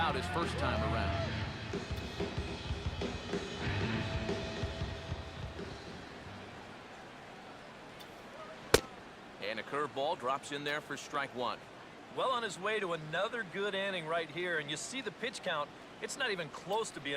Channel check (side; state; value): both; identical; correlation 1.00